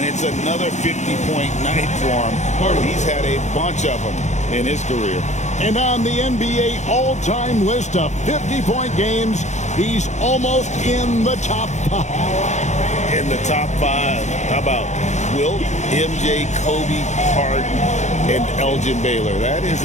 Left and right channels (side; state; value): right; late; 0.34 ms